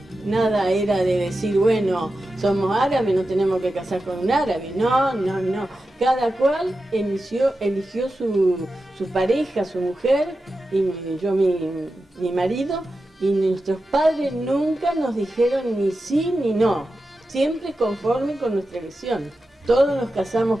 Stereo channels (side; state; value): both; normal; correlation 0.91